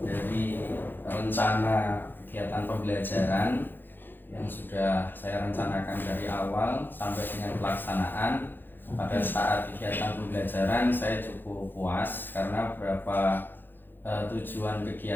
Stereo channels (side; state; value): right; late; 0.095 ms